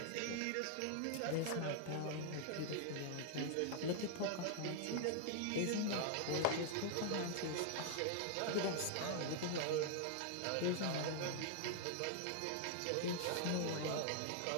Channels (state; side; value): different; both; correlation 0.00